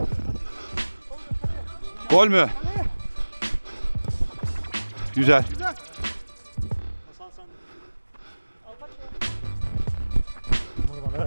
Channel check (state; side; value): inverted; both; correlation -1.00